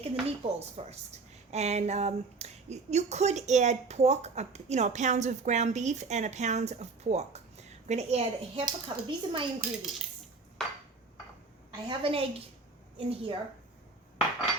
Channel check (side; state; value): left; quieter; 4.1 dB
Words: the meatballs first. And you could add pork, a pound of ground beef and a pound of pork. I'm going to add a half a cup. These are my ingredients. I have an egg in here. I